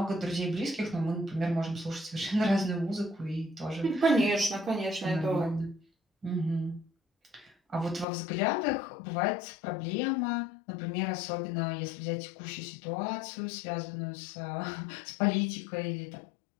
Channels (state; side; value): drops out; right; at 8.1 s